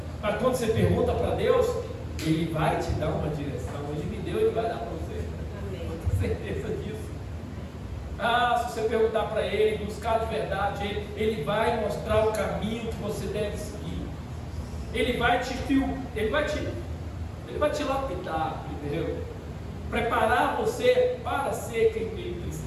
Mas quando você pergunta para Deus, Ele vai te dar uma direção. Ele me deu, Ele vai dar para você. Amém. Eu tenho certeza disso. Se você perguntar para Ele, buscar de verdade Ele vai mostrar o caminho que você deve seguir. Ele vai te lapidar primeiro, preparar você para ser quem Ele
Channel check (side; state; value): both; identical; correlation 1.00